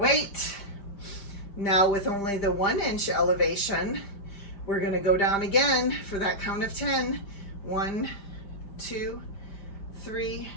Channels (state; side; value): late; right; 5.0 ms